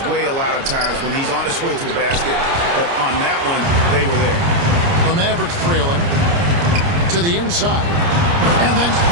way a lot of times when he's on his way to the basket. But on that one, they were there. The Mavericks trailing to the inside. And then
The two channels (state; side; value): late; left; 29 ms